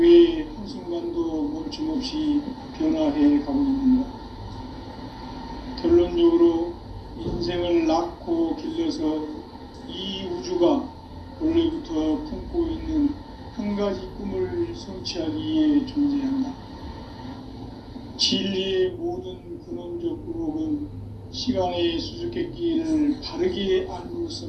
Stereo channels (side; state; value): both; identical; correlation 1.00